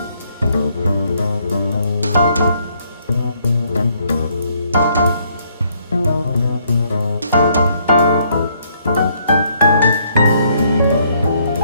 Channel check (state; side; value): inverted; both; correlation -0.69